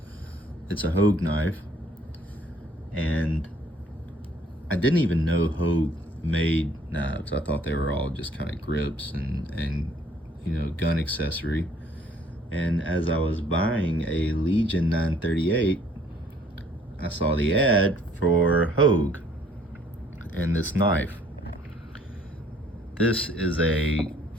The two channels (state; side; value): normal; both; correlation 0.61